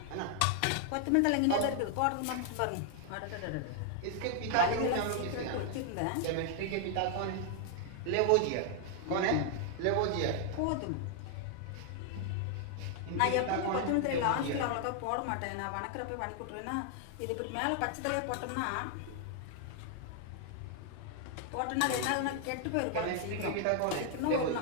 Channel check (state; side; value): different; both; correlation 0.00